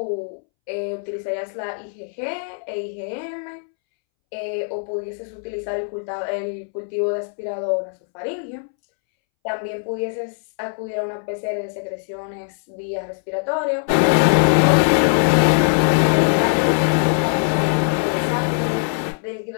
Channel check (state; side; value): silent; right; 65 dB below the other